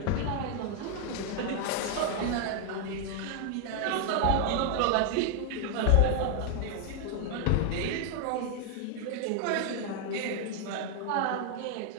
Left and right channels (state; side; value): different; both; correlation 0.00